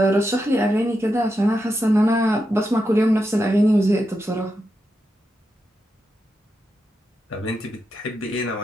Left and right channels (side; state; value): both; normal; correlation 0.86